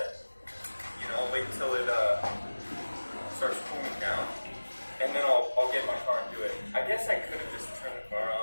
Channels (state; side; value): inverted; both; correlation -1.00